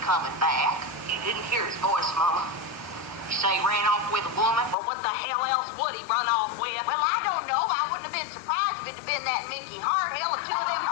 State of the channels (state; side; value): drops out; right; at 4.8 s